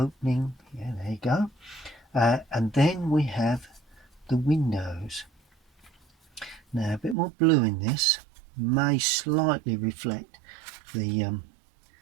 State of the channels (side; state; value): left; drops out; at 7.2 s